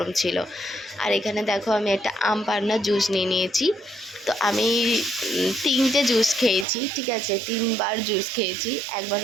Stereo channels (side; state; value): left; drops out; at 6.7 s